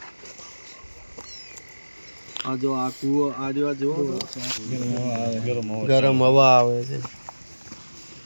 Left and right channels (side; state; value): both; inverted; correlation -1.00